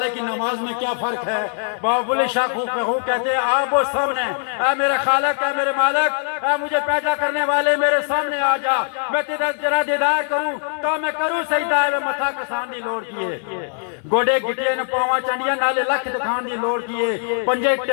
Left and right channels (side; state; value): right; silent; 63 dB below the other